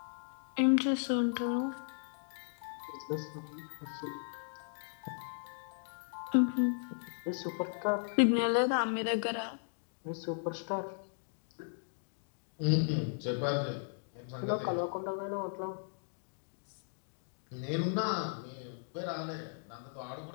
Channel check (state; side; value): silent; right; digital silence